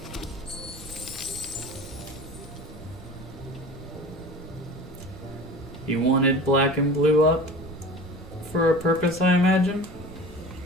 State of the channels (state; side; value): normal; both; correlation 0.38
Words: He wanted black and blue up for a purpose, I imagine.